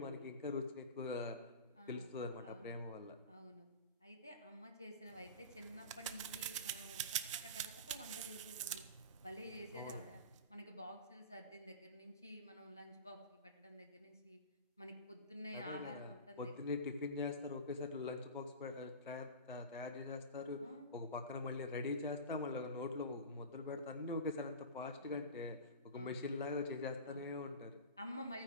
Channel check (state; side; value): inverted; both; correlation -0.31